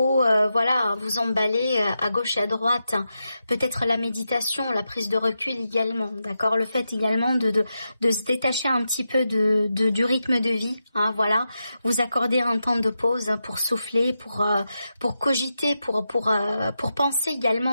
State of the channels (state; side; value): inverted; both; correlation -0.88